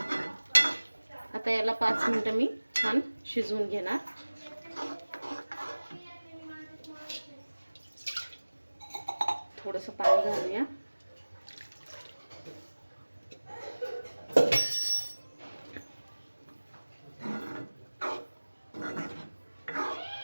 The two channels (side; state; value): both; inverted; correlation -1.00